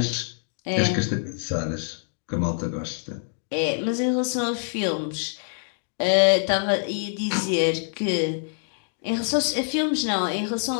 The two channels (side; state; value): right; silent; digital silence